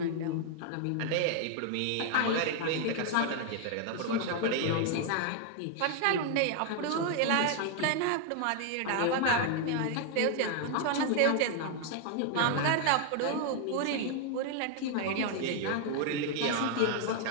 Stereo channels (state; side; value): different; both; correlation 0.00